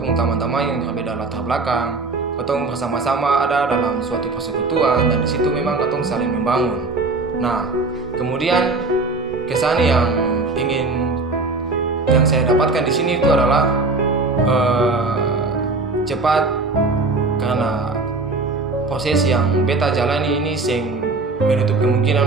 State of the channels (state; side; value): quieter; left; 3.6 dB